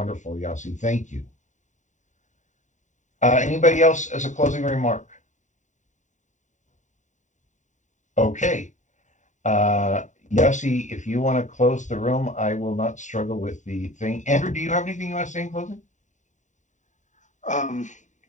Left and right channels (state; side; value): late; right; 0.36 ms